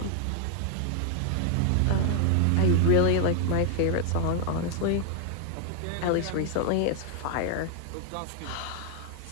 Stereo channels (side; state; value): both; different; correlation 0.00